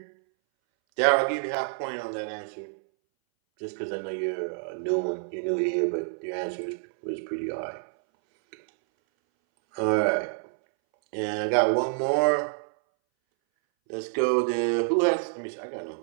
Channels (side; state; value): left; silent; 60 dB below the other